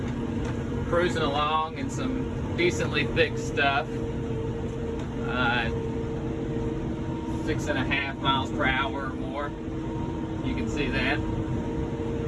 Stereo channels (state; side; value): identical; both; correlation 1.00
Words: cruising along in some decently thick stuff. 6.5 miles per hour or more. You can see that,